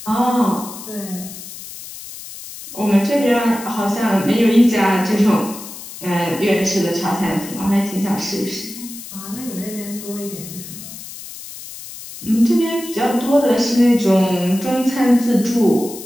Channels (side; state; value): left; noise; hiss, 13 dB below the sound